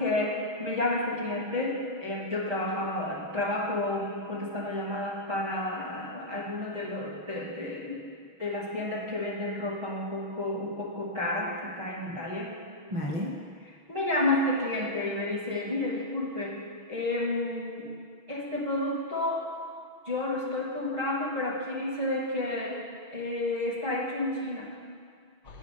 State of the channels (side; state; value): left; late; 6.3 ms